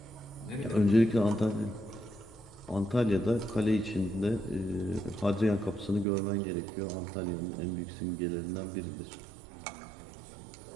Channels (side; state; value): left; drops out; at 6.1 s